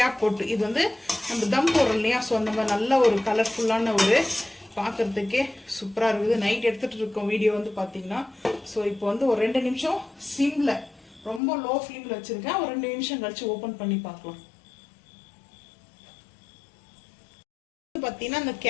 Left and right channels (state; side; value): drops out; right; at 11.4 s